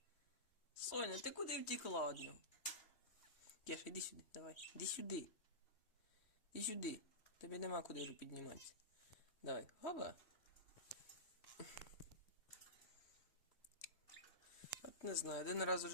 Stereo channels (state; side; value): late; right; 3.1 ms